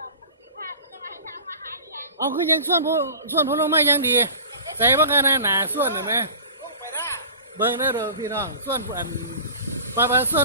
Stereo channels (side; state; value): both; inverted; correlation -0.39